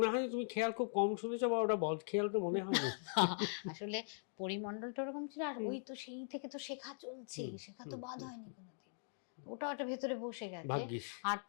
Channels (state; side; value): silent; right; digital silence